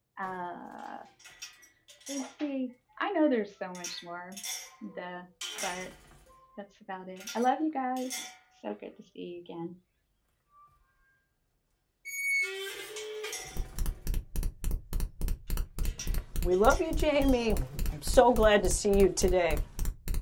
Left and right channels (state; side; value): identical; both; correlation 1.00